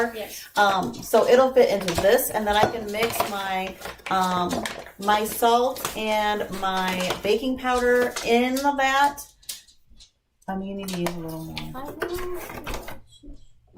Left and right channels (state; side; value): identical; both; correlation 1.00